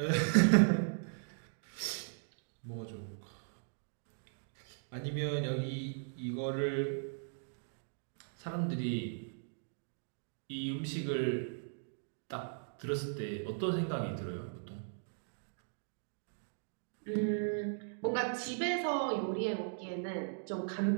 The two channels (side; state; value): left; silent; digital silence